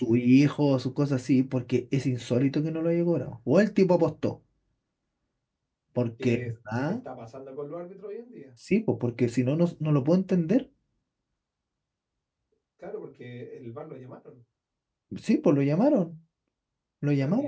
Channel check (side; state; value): both; identical; correlation 1.00